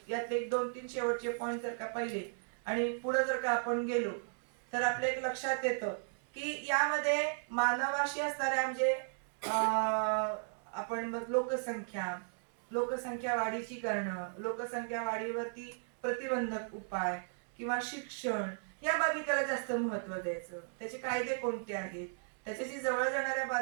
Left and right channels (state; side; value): silent; left; digital silence